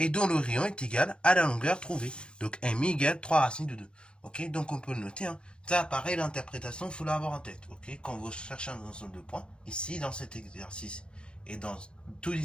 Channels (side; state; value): right; late; 0.056 ms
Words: dont le rayon est égal à la longueur trouvée. Donc MI égale 3 racines de 2. Ok, donc on peut le noter. Hein. Ça, pareil, l'interprétation, il faut l'avoir en tête. Ok, quand vous cherchez un ensemble de points, ici, dans cet exercice, et dans tous